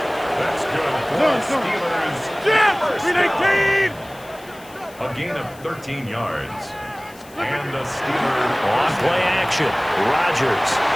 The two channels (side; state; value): left; noise; hiss, 23 dB below the sound